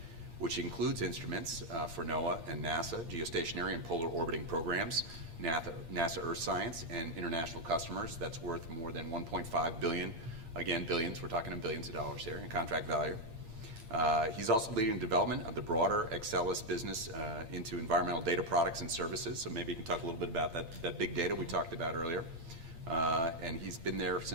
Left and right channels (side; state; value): left; late; 8.6 ms